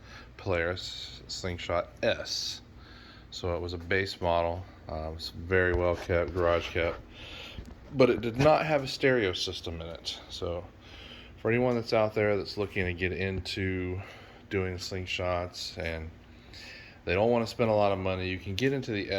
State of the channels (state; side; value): identical; both; correlation 1.00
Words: Polaris Slingshot S. So it was a base model. It was very well kept, garage kept, but it did not have a stereo system in it. So for anyone that's out there that's looking to get into doing slingshots and they don't want to spend a lot of money, you can get into the